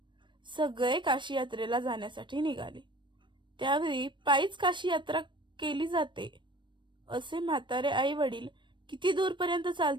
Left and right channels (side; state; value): left; late; 0.23 ms